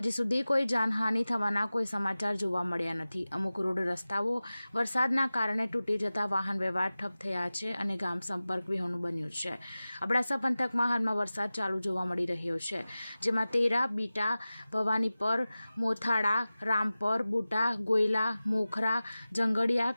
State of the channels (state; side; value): inverted; both; correlation -0.96